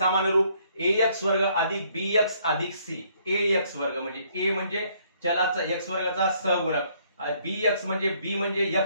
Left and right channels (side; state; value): both; inverted; correlation -0.66